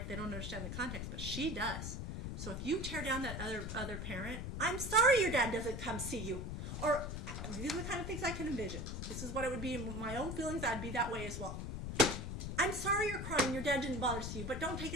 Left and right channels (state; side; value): noise; left; rumble, 5 dB below the sound